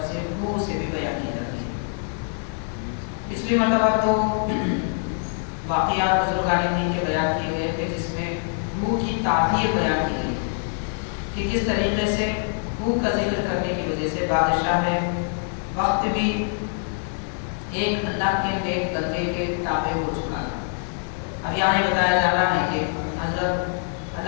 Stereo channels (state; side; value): silent; right; 62 dB below the other